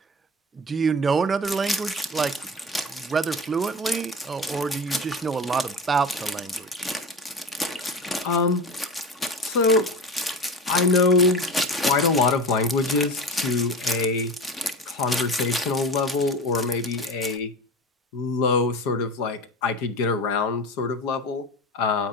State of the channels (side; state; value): both; normal; correlation 0.30